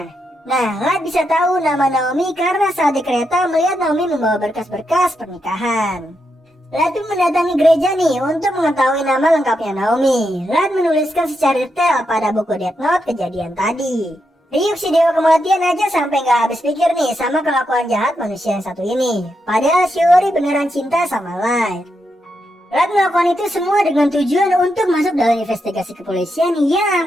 Nah, Light bisa tahu nama Naomi karena saat di kereta melihat Naomi membawa berkas-berkas pernikahan. Light pun mendatangi gereja nih untuk mengetahui nama lengkapnya Naomi. Light menuliskan secara detail pada buku Death Note kejadian tadi. Ryuk si dewa kematian aja sampai gak habis pikir nih sama kelakuan jahat manusia yang satu ini. Padahal Shiori beneran cinta sama Light. Light melakukan itu semua dengan tujuan untuk masuk dalam investigasi kepolisian yang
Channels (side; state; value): both; normal; correlation 0.83